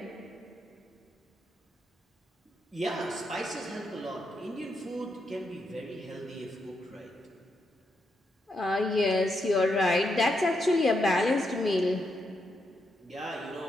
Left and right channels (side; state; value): both; normal; correlation 0.81